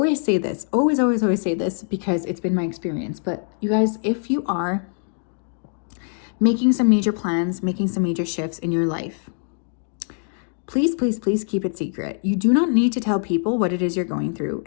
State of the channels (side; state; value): right; silent; 60 dB below the other